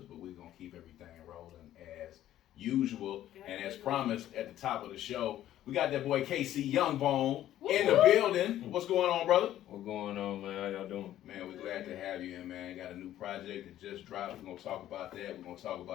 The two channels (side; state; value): right; quieter; 12.7 dB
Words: but we're going to keep everything rolling as usual. And as promised at the top of the show, we got that boy KC YoungBone in the building. What's going on, brother? What's going on, man? How y'all doing? Man, we're glad to have you in, man. Got a new project that just dropped. We're going to talk about that. We're going to talk